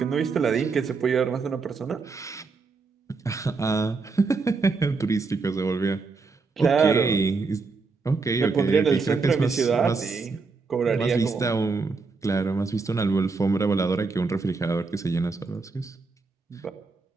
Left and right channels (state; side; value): quieter; left; 4.3 dB